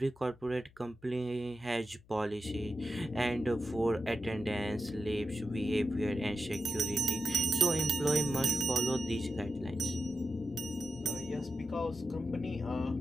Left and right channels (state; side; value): noise; left; hum, 27 dB below the sound